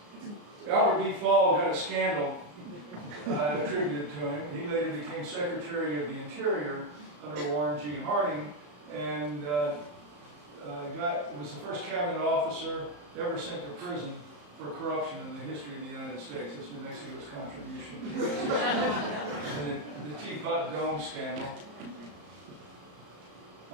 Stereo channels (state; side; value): late; left; 34 ms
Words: B. Fall got a scandal attributed to him. He later became Secretary of the Interior under Warren G. Harding, and was the first cabinet officer ever sent to prison for corruption in the history of the United States. That's New Mexico's contribution to the Teapot Dome scandal.